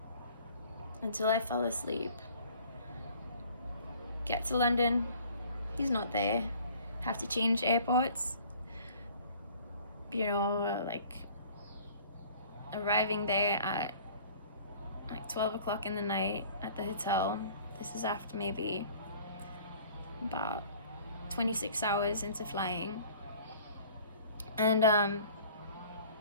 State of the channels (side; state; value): both; inverted; correlation -0.51